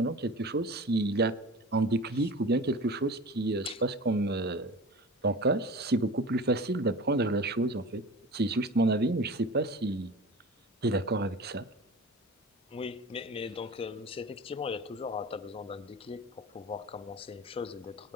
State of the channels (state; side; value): normal; both; correlation 0.36